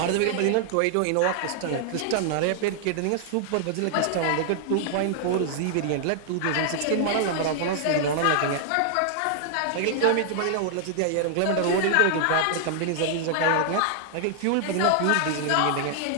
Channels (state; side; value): different; both; correlation -0.01